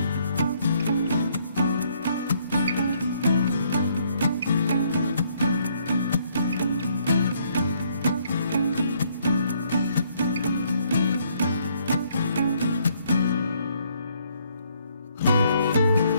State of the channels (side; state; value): both; inverted; correlation -0.68